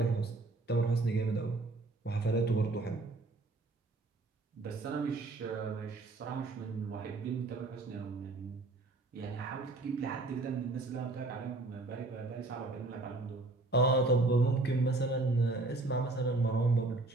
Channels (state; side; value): quieter; left; 3.2 dB